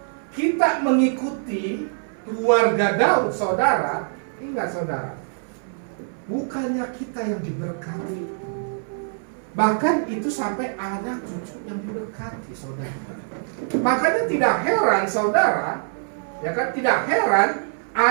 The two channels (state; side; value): silent; left; 62 dB below the other